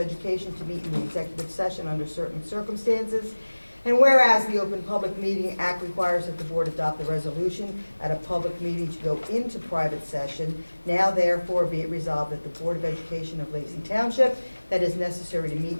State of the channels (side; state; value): both; inverted; correlation -1.00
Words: to meet in the executive session under certain circumstances. And whereas the Open Public Meeting Act requires that the board adopt a resolution at a public meeting to go into private session, now therefore be it resolved that the Board of Education of Lacey Township that is necessary to meet